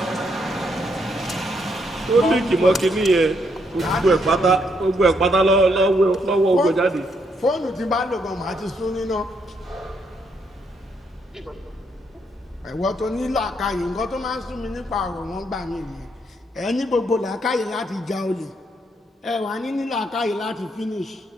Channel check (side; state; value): both; normal; correlation 0.75